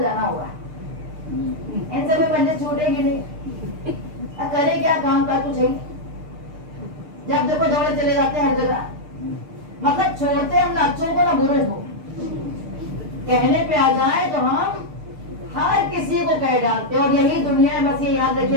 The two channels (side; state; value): left; late; 6.6 ms